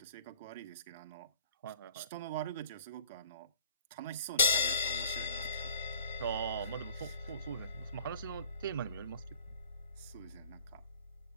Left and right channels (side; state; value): both; inverted; correlation -0.52